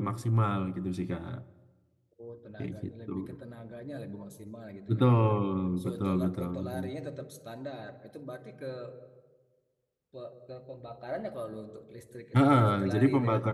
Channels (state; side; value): identical; both; correlation 1.00